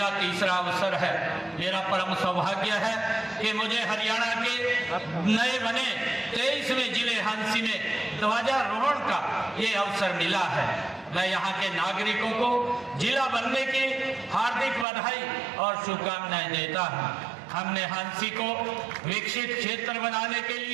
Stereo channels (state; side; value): drops out; left; at 14.9 s